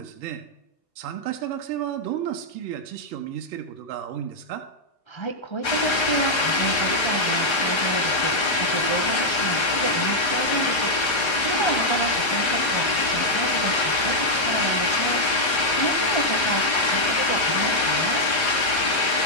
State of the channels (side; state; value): right; late; 1.3 ms